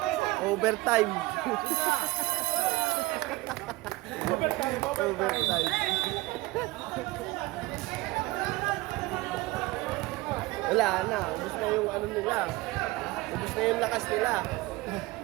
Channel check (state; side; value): quieter; left; 20.7 dB